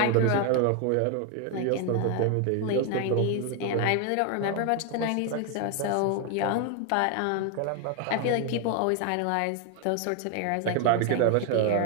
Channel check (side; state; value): both; different; correlation 0.01